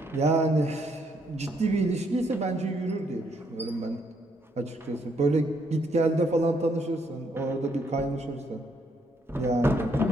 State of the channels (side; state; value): both; normal; correlation 0.72